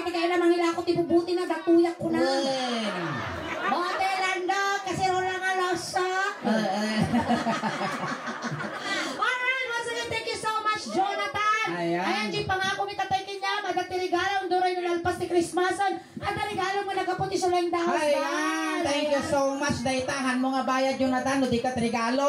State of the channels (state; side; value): identical; both; correlation 1.00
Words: kayo na mangilakot, ibubuti na, datuyak ko na. Motelando, kasi wala nga lasa. Alright, once again, thank you so much, Jonathan. Ayan, G, pangako mi tatay kanya, magatiregalo, duray na lalpas ni Christmasan. At regalo mo nagaputi sa Suling Daos. Ayan, thank you so much. Daitahan mo nga bayad Jonathan, no di ka